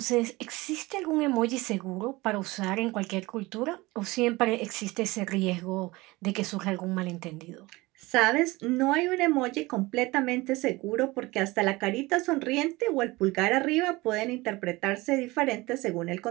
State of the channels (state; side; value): quieter; left; 21.6 dB